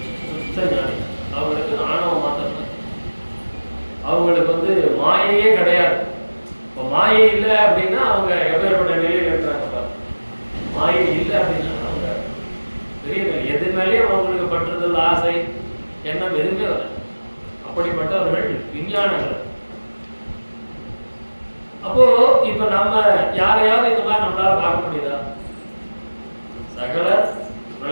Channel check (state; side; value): inverted; both; correlation -1.00